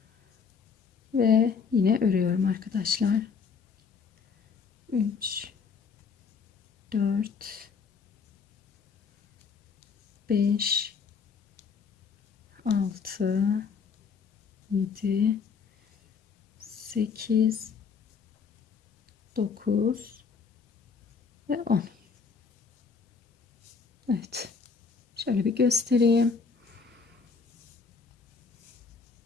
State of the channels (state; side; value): quieter; right; 5.6 dB